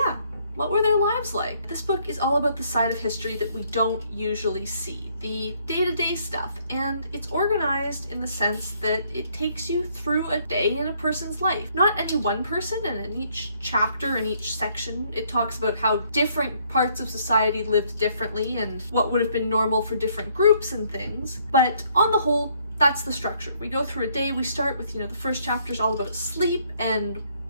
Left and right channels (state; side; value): inverted; both; correlation -0.67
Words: what were their lives like? This book is all about the side of history that we don't usually see, the day-to-day stuff, and it's organized in the sense that it takes you through a day in a person's life. Not any one person, and in each chapter, in each section, it talks about how different parts of society lived differently and what would have been normal for different groups and things, but on the whole, that's the structure. We go through a day, we start with, the first chapter is all about sleep and